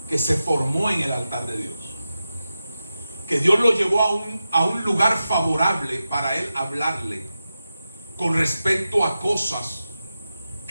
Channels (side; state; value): both; inverted; correlation -0.92